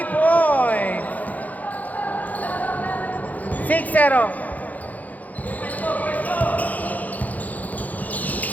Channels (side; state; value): right; late; 0.079 ms